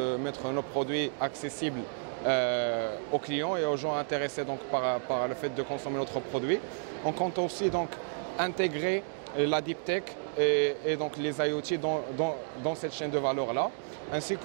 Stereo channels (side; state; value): left; silent; digital silence